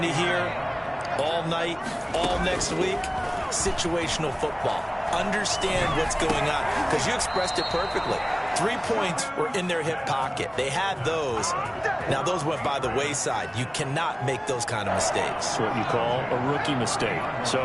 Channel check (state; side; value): identical; both; correlation 1.00